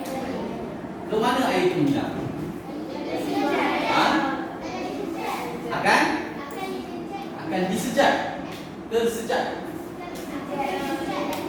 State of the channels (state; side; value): identical; both; correlation 1.00